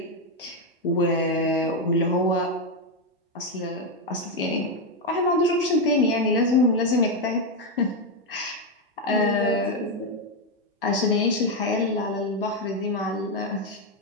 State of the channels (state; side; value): normal; both; correlation 0.05